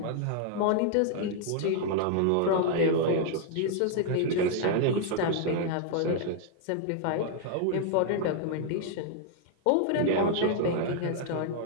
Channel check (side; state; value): both; different; correlation 0.00